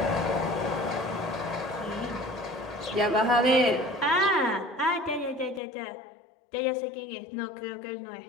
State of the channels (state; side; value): drops out; right; at 5.6 s